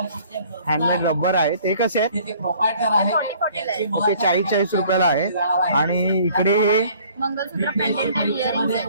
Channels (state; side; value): inverted; both; correlation -0.56